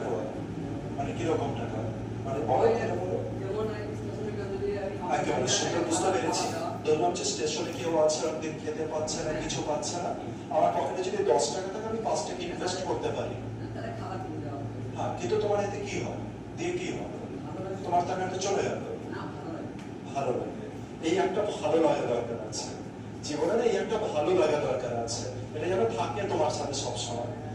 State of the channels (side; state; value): both; identical; correlation 1.00